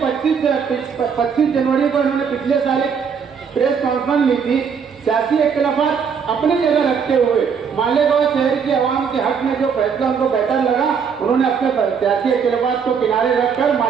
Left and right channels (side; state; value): left; quieter; 6.5 dB